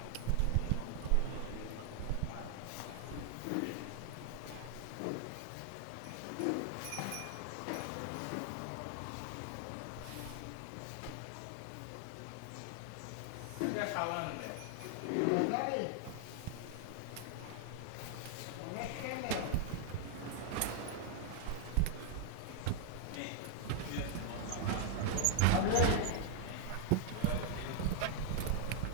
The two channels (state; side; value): different; both; correlation 0.00